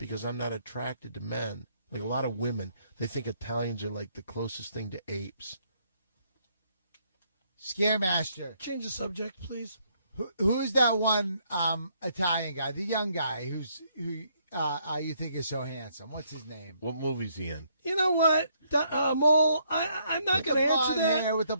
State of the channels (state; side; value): inverted; both; correlation -0.70